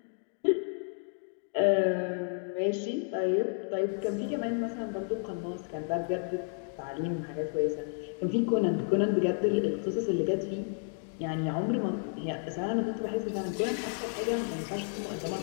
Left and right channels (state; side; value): silent; right; 57 dB below the other